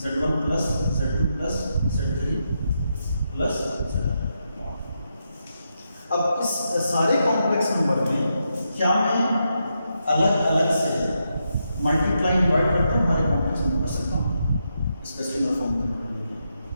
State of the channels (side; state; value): both; inverted; correlation -0.83